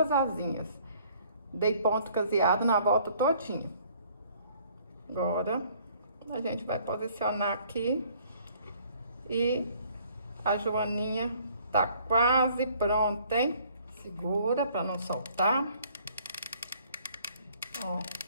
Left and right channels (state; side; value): inverted; both; correlation -0.60